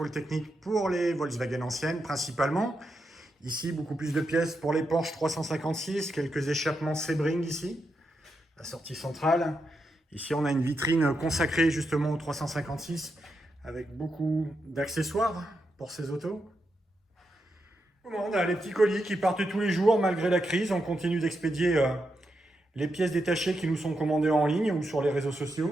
technique pour les Volkswagen anciennes principalement. Ici, beaucoup plus de pièces pour les Porsche 356, quelques échappements Sebring ici, la sortie centrale. Ici, on a une vitrine consacrée justement au 356 avec beaucoup d'accessoires pour ces autos. On a les petits colis qui partent tous les jours malgré la crise. On continue d'expédier les pièces détachées qui nous sont commandées en ligne ou sur les réseaux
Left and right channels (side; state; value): both; normal; correlation 0.84